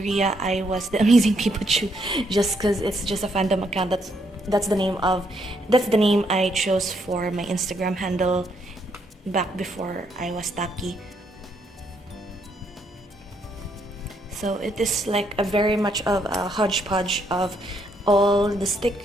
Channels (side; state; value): both; normal; correlation 0.74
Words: I was the Amazing Pikachu, just because it's just a fandom account. That's the name I chose for my Instagram handle back before I was Taki. So it is like a very much of a hodgepodge of all the